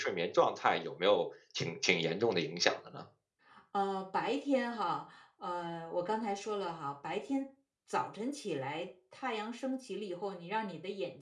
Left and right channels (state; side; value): identical; both; correlation 1.00